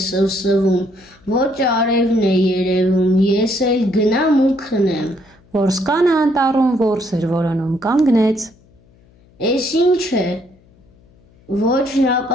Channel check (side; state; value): left; noise; hum, 30 dB below the sound